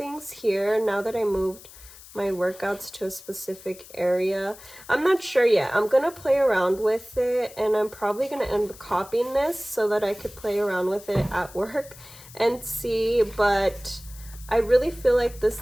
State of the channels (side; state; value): left; noise; hiss, 19 dB below the sound